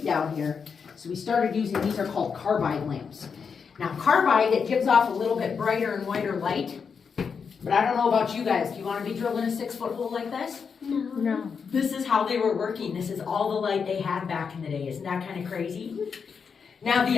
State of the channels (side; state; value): right; quieter; 6.0 dB